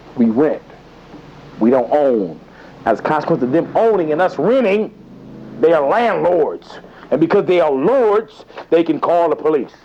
We rent. We don't own. As a consequence of them owning and us renting, they are landlords. And because they are lords, they can call the police.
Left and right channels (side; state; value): both; identical; correlation 1.00